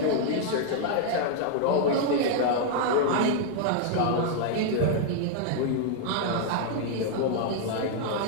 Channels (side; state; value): both; different; correlation -0.01